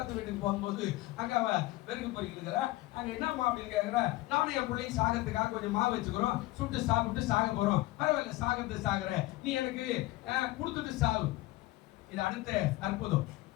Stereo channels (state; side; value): quieter; right; 18.8 dB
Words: வீட்டுக்கு போகும்போது அங்க அவ வெறுக்கு பொறிக்கிறா. அங்க என்னம்மா அப்படின்னு கேட்கிறா. நானும் என் பிள்ளையும் சாகிறதுக்காக கொஞ்சம் மாவு வச்சுக்கிறோம், சுட்டு சாப்பிட்டு சாக போறோம். பரவாயில்ல, சாகிறது சாகுற, நீ எனக்கு கொடுத்துட்டு சாவு. இது அடுத்த அற்புதம்,